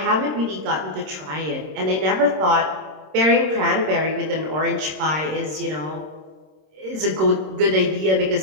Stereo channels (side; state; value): left; late; 26 ms